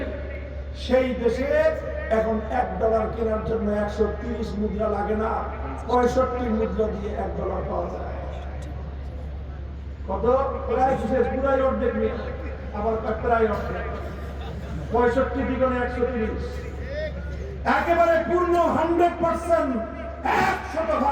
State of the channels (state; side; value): identical; both; correlation 1.00